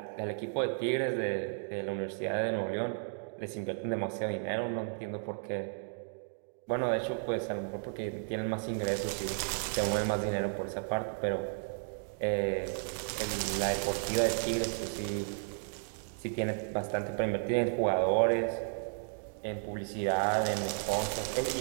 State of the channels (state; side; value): silent; left; digital silence